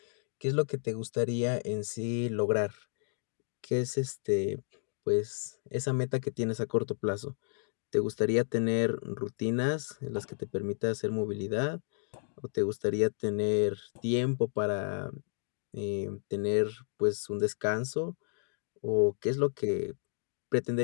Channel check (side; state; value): right; silent; digital silence